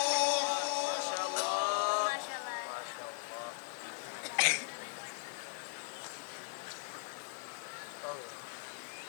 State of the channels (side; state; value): right; silent; digital silence